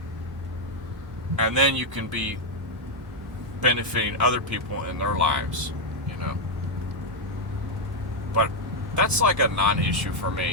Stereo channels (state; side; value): normal; both; correlation 0.00